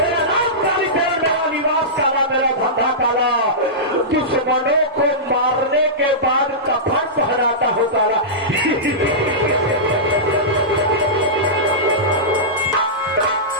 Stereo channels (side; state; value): both; normal; correlation -0.15